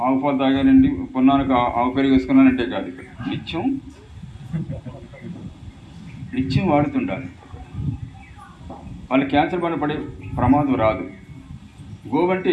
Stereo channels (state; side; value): identical; both; correlation 1.00